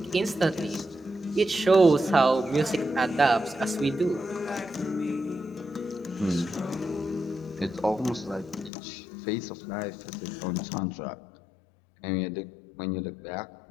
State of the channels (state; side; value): drops out; right; at 8.7 s